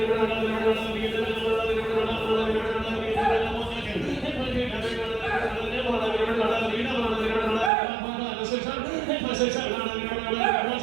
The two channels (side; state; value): left; drops out; at 7.7 s